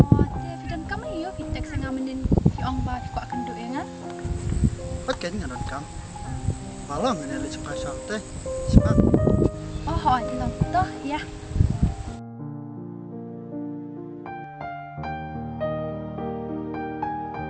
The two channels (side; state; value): both; identical; correlation 1.00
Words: Te fidan kamu yo pitek sangamenin Jong I ko akan do engan. Pakai dengan kam. Malam ini le cepat santai. Cepat. Tilong toh ya.